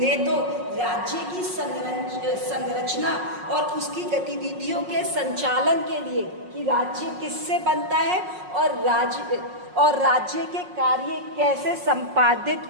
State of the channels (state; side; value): late; left; 5.5 ms